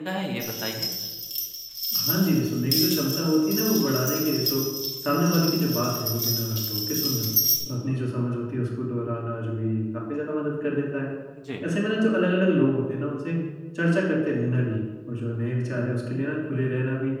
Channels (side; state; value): both; identical; correlation 1.00